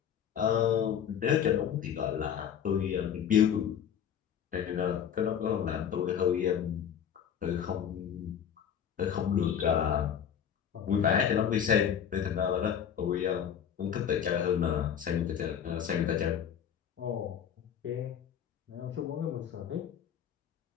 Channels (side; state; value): right; quieter; 8.7 dB